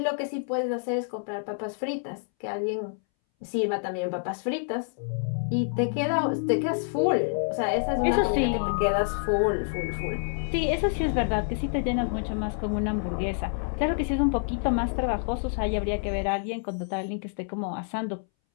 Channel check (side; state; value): right; silent; 60 dB below the other